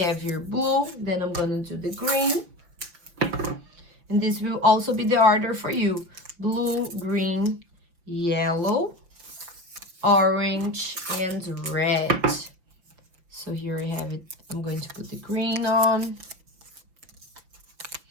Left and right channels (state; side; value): late; left; 5.8 ms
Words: here blue, then I'm gonna do the green, and this will also be the order for you. Blue, green, yellow, orange, and red. So here I have it. I'm going to put the green on.